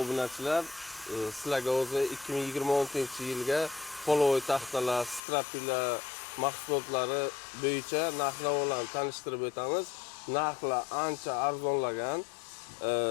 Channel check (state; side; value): drops out; right; at 5.2 s